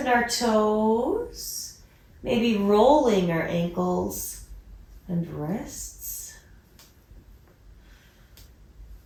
our toes. Maybe rolling our ankles and wrists.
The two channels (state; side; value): identical; both; correlation 1.00